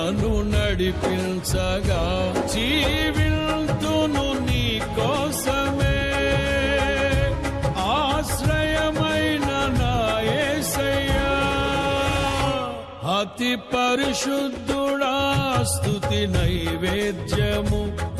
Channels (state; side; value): identical; both; correlation 1.00